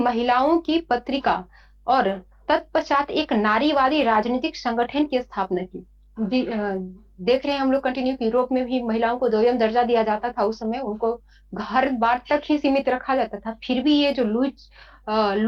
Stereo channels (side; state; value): both; identical; correlation 1.00